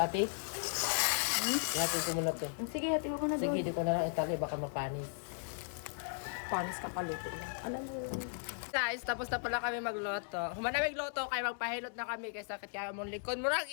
Hatid ko muna to. Sige, hati mo na Sige, doon. di ko na lang itali. Baka mapanis. Panis ka paluto. Alam mo. Guys, tapos na pala kami magloto. Humana magloto, kaya magpahilot na kami. Kaya sakit kaya mong likod. Murang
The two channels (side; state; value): right; silent; digital silence